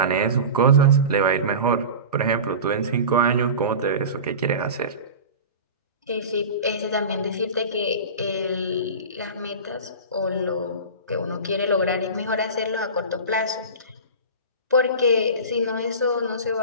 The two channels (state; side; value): inverted; both; correlation -0.31